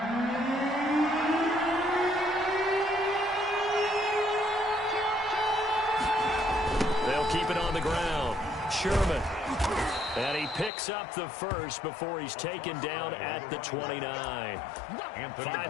Sherman. And he picks up the first before he's taken down at the 29.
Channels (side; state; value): right; drops out; at 10.7 s